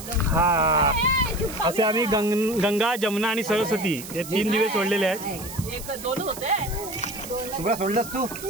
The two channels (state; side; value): noise; right; hiss, 12 dB below the sound